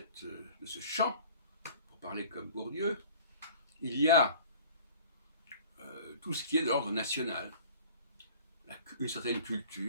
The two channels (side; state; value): both; inverted; correlation -0.47